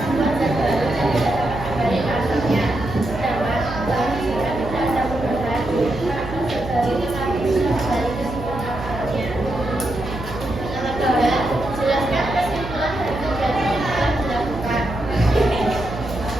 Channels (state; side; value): noise; right; hum, 10 dB below the sound